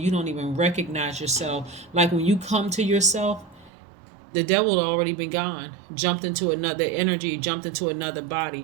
don't even recognize yourself. Like when you come to yourself, the devil had already been gone, jumped into another energy, jumped into another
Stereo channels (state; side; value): drops out; left; at 3.7 s